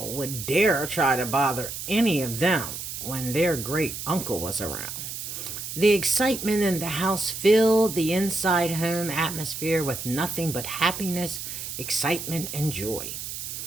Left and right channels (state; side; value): noise; right; hiss, 7 dB below the sound